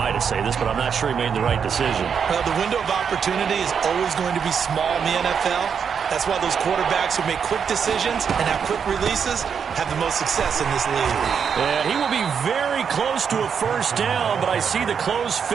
to say this, but I'm not sure he made the right decision. The window of opportunity is always going to be small in the NFL. That's why those quarterbacks who make quick decisions and have quick releases have the most success in this league. And he will be very close to a first down, but I see the closed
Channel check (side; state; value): left; quieter; 6.9 dB